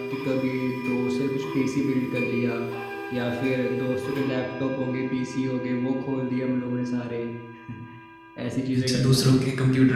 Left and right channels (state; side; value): identical; both; correlation 1.00